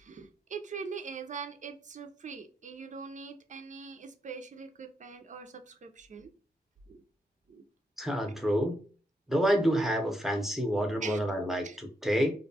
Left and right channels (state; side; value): normal; both; correlation 0.80